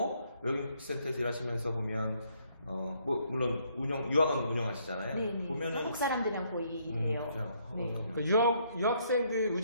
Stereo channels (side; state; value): both; inverted; correlation -0.70